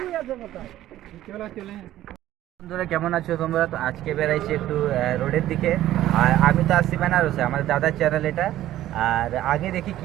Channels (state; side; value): quieter; left; 13.7 dB